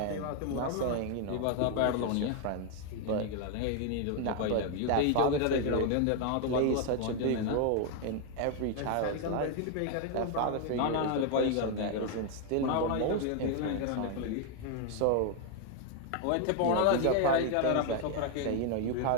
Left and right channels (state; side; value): different; both; correlation 0.01